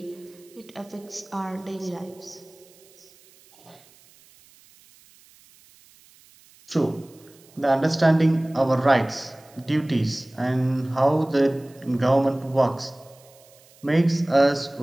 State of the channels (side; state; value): right; noise; hiss, 27 dB below the sound